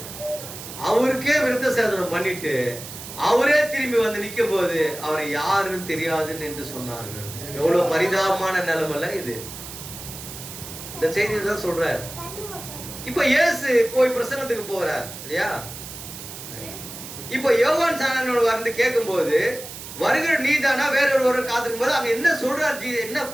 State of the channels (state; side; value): noise; right; hiss, 12 dB below the sound